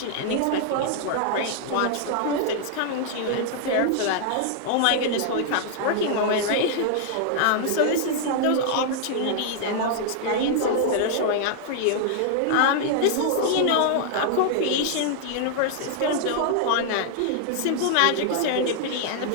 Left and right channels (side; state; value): both; different; correlation -0.01